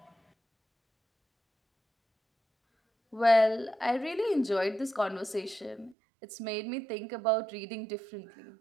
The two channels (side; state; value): left; drops out; at 6.0 s